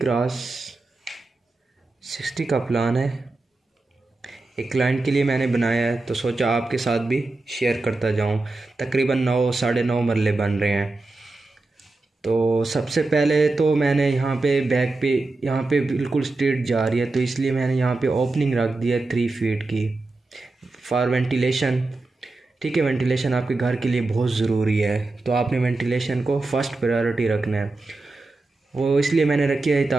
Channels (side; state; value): left; quieter; 3.2 dB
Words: का प्लान है। एक क्लाइंट के लिए मैंने बनाया है तो सोचा आपके साथ भी शेयर करता जाऊँ। तकरीबन 9 साढ़े 9 मरले बन रहे हैं। तो सबसे पहले तो मैंने यहाँ पे बैक पे यहाँ पे बिल्कुल स्ट्रेट जा रही है तो इसलिए मैंने यहाँ पे ओपनिंग रख दी है 3 फीट की फॉर वेंटिलेशन। ठीक है, वेंटिलेशन आपके घर के लिए बहुत ज़रूरी है तो आपने वेंटिलेशन को फर्स्ट प्रायोरिटी रखना है। वो इसलिए मैंने रखी है